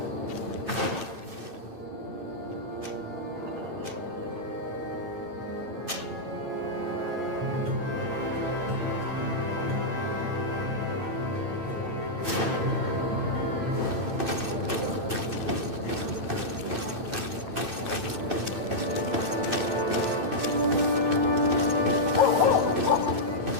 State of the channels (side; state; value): left; late; 9.0 ms